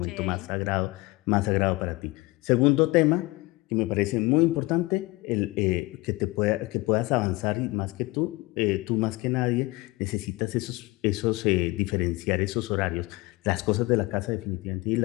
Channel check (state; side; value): quieter; right; 22.1 dB